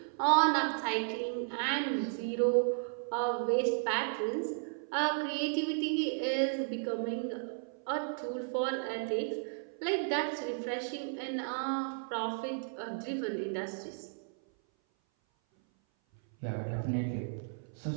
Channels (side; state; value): left; silent; 55 dB below the other